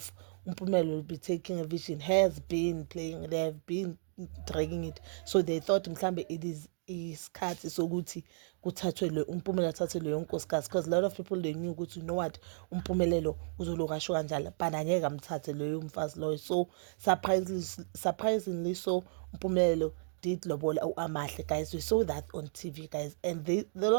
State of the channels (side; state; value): left; silent; digital silence